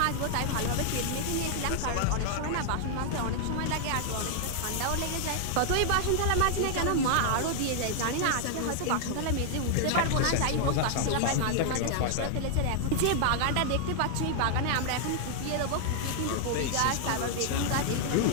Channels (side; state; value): both; different; correlation -0.01